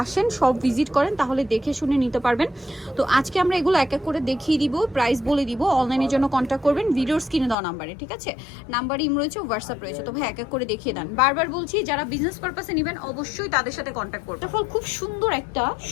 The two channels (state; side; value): drops out; right; at 7.6 s